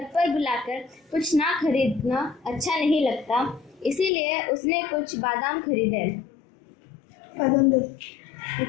पर बुलाकर कुछ ना खरीदना अच्छा नहीं लगता, इसीलिए उसने कुछ बादाम खरीदे। बादाम दे।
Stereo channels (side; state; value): right; drops out; at 4.1 s